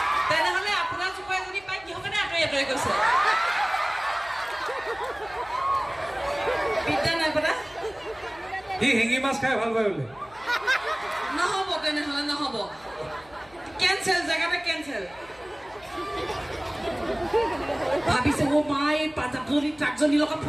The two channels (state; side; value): noise; left; hum, 26 dB below the sound